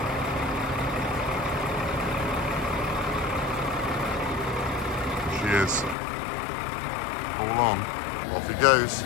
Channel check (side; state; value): right; drops out; at 6.0 s